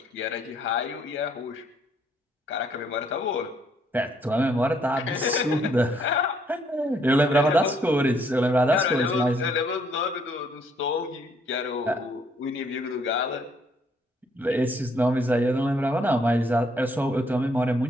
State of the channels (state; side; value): normal; both; correlation 0.68